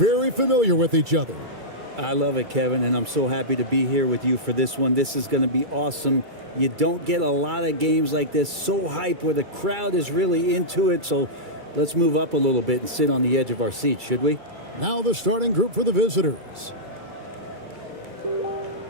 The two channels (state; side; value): late; left; 2.3 ms